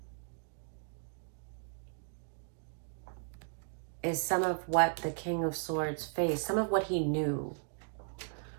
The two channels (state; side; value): silent; left; digital silence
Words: is some of what the King of Swords faced, some of what he knew